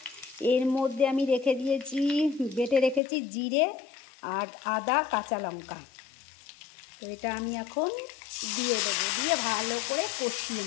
এর মধ্যে আমি রেখে দিয়েছি, বেটে রেখেছি জিরে আর আদা কাঁচা লঙ্কা। তো এটা আমি এখন দিয়ে দেবো, দিয়ে ভালো করে কষিয়ে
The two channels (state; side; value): drops out; right; at 3.0 s